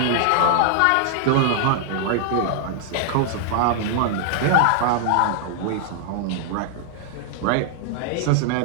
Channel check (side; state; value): both; different; correlation 0.00